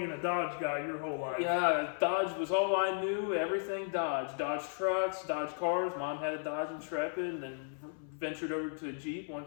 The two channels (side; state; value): right; silent; 55 dB below the other